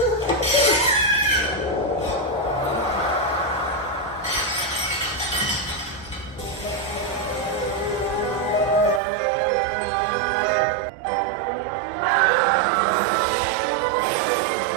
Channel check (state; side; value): drops out; left; at 9.0 s